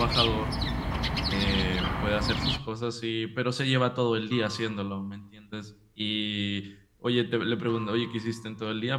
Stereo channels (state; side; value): identical; both; correlation 1.00